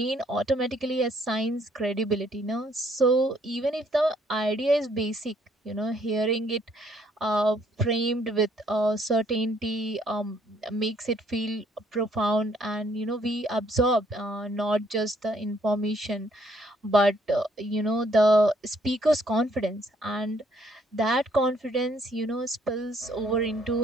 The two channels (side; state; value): both; normal; correlation 0.66